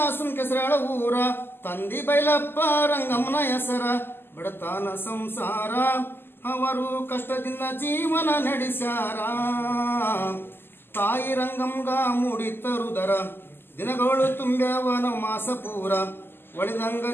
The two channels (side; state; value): right; late; 0.10 ms